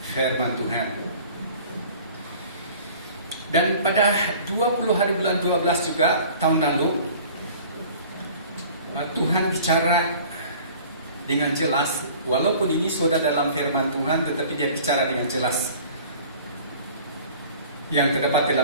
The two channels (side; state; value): both; inverted; correlation -0.47